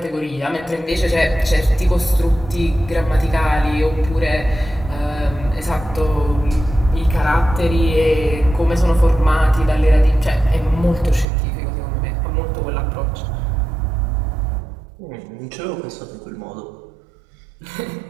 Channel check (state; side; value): drops out; left; at 11.2 s